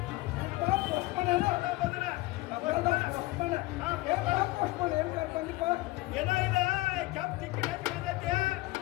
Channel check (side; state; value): right; quieter; 20.3 dB